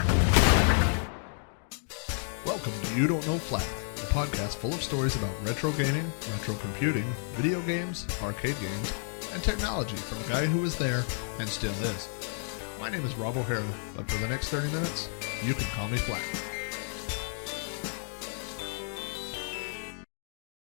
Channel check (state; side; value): silent; right; 57 dB below the other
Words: Welcome to You Don't Know Flack, a podcast full of stories about retro gaming, retro computing, video games, arcade games, and technology from a guy who was there and still is. My name is Rob O'Hara, but for the next 30 minutes, you can call me Flack.